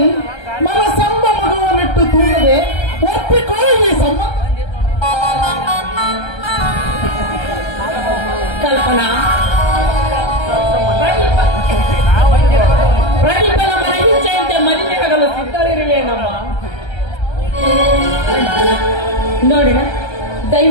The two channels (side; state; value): right; late; 1.3 ms